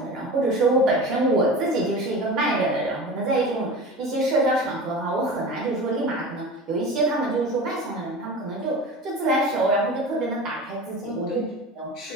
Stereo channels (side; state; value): both; normal; correlation 0.33